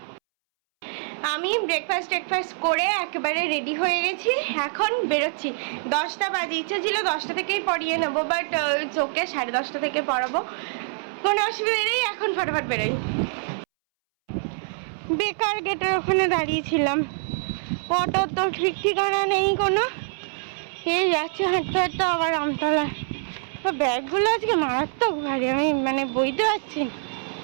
আমি ব্রেকফাস্ট করে একেবারে রেডি হয়ে গেছি, এখন বেরোচ্ছি। 10টা বাজে, ইচ্ছা ছিল 10টা থেকেই পড়িয়ে নেবো, বাট চোখে 10:30 থেকে পড়াবো, কোনো অসুবিধা নেই। এখন ফটাফট বেরোই। বেকার গেটের ওখানে দাঁড়িয়েছিলাম, অটো তো ঠিক ঠিকানা নেই কোনো, এই যাচ্ছে হাঁটতে হাঁটতে আবার আমতলা। ব্যাগগুলো আজকে মারাত্মক ভারী, আমি মানে বইতে পারছি না।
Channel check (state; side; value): silent; left; 62 dB below the other